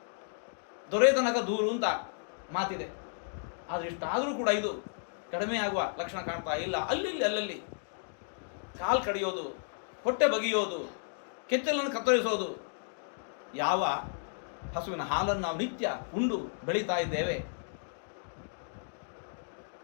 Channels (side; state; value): right; silent; digital silence